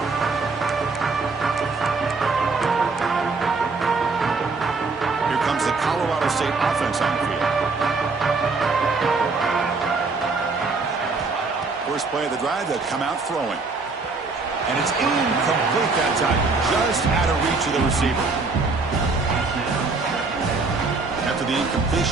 Here comes the Colorado State offense on the field. First play of the drive, they'll come out throwing. And it's incomplete that time, just out of reach of the receiver. After the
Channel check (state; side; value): quieter; left; 4.0 dB